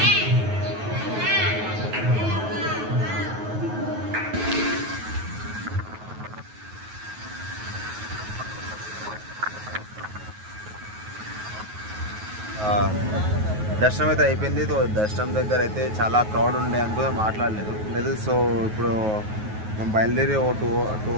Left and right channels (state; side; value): late; left; 9.4 ms